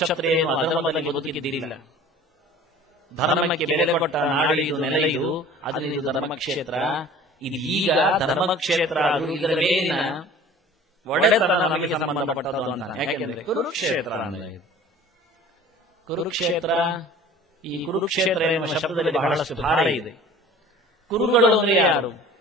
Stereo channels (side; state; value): both; normal; correlation 0.45